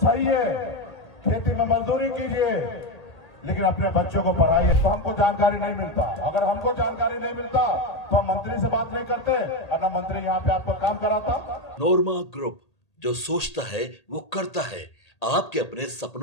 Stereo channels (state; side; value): late; right; 1.8 ms